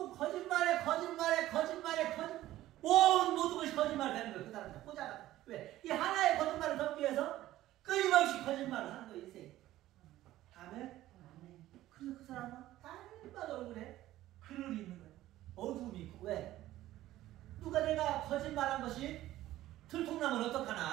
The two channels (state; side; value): quieter; left; 14.9 dB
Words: 거짓말에 모든 것이 거짓말이 되는 거예요. 그 사람들 보잖아. 왜? 이 하나의 거짓말을 덮기 위해서 끊임없이 거짓말을 하는 거예요. 인생. 아멘. 그래서 그 사람은 날마다 얼굴에 그늘이 있는 거예요. 어두움이 있고. 왜? 누가 내가 거짓말한 것이 들통나면